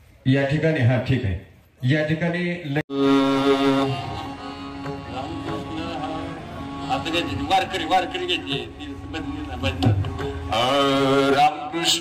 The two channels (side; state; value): both; identical; correlation 1.00